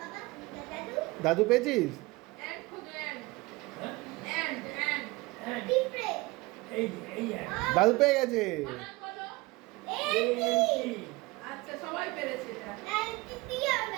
দাদু পেয়েছিস এন্ড খুঁজো এন্ড দাদু পেয়ে গেছে বানান বলো আচ্ছা সবাই পেরেছে এটা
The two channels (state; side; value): quieter; left; 22.7 dB